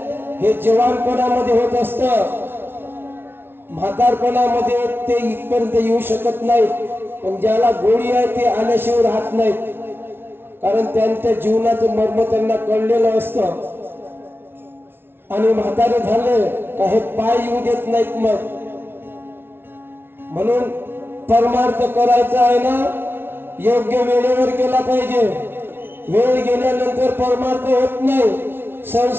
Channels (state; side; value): late; left; 0.11 ms